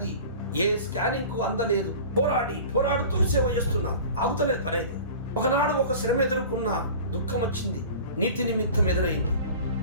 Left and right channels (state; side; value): inverted; both; correlation -0.39